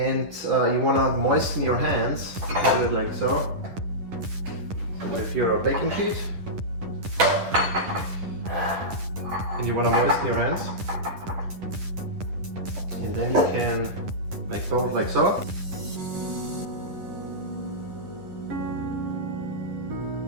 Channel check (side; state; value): left; late; 10 ms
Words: you want to moisten your hands. You can do it like so. So if you're a baking sheet, and you want to moisten your hands, and then you can make bowls like so.